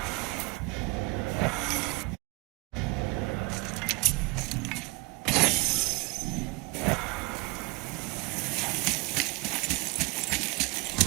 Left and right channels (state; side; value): quieter; left; 26.8 dB